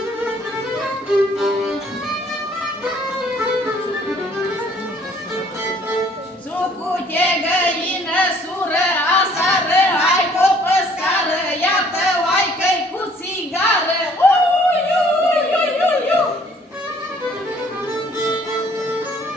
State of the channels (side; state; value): both; normal; correlation 0.59